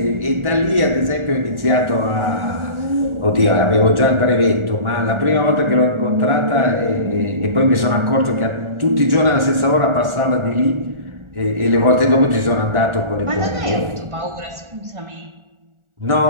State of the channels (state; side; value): late; left; 1.4 ms